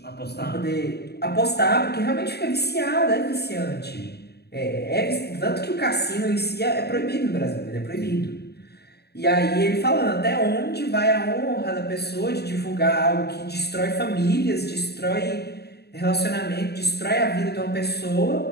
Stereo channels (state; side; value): late; right; 0.47 ms